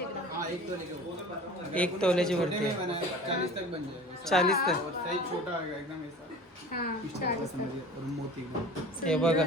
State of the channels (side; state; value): both; normal; correlation 0.40